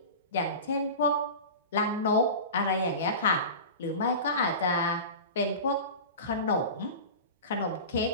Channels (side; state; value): both; inverted; correlation -0.31